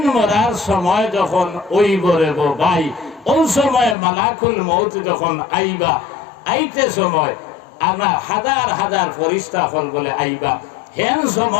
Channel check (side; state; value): right; drops out; at 4.0 s